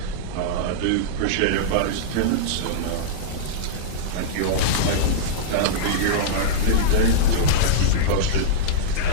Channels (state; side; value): different; both; correlation -0.04